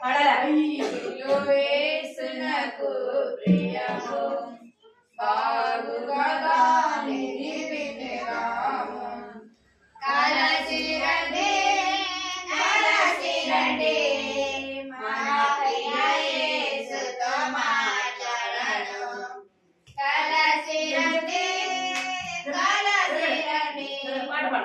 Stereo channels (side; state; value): both; identical; correlation 1.00